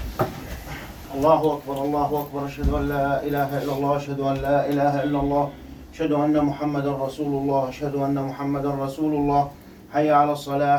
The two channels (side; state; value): both; identical; correlation 1.00